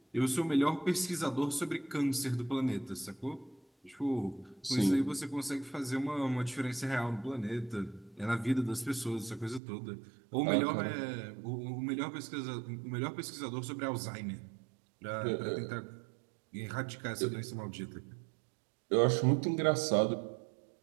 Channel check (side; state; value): left; drops out; at 9.6 s